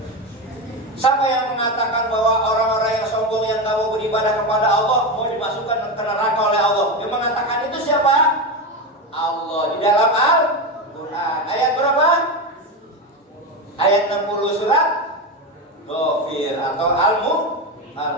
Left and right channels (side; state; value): both; normal; correlation 0.15